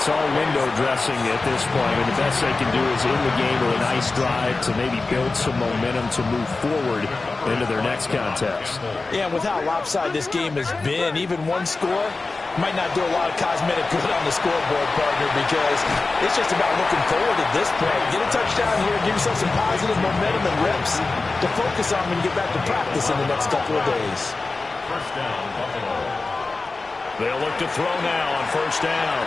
all window dressing at this point, and the best they can do is in the game with a nice drive to maybe build some momentum to move forward into their next contest. Yeah, with how lopsided this game has been, even one score might not do a lot of cosmetic good on the scoreboard, partner, because it's just about looking forward at this point. Get a touchdown here, give yourself some positive momentum and reps to focus on when you get back to practice in the next couple of days. First down, Buffalo. They'll look to throw now on first down.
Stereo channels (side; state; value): right; quieter; 3.6 dB